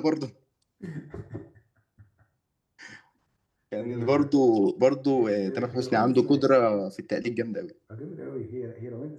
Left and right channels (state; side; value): identical; both; correlation 1.00